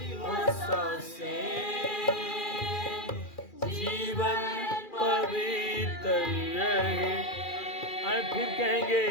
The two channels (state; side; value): late; right; 2.4 ms